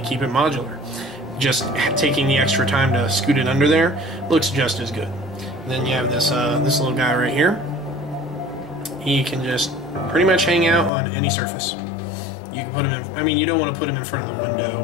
keep it modular. Just taking the extra time to scoot it under there looks just as good. And then you have this little guy right here. He can just pretty much hang out on any surface. You can put him in, I mean, you don't want to put him in front of the window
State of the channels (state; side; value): drops out; right; at 10.9 s